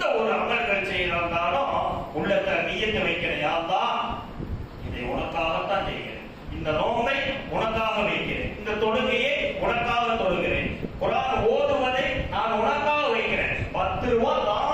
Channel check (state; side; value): identical; both; correlation 1.00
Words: ஒரு அமல்கள் செய்யறாலும் உள்ளத்துல நியத்து வைக்கிறேன், யா அல்லாஹ் இதை உனக்காகத்தான் செய்கிறேன், இந்த நோன்பை உனக்காக வைக்கிறேன், இந்த தொழுகையை உனக்காக தொழுகிறேன், குர்ஆன் ஓதுவதை நான் உனக்காக வைக்கிறேன், 10 ரூபாய்